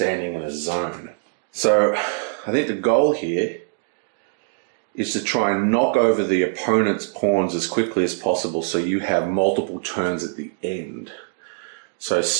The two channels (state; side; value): silent; left; digital silence